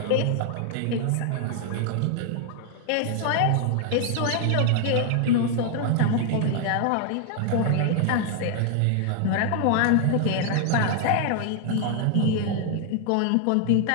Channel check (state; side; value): different; both; correlation 0.00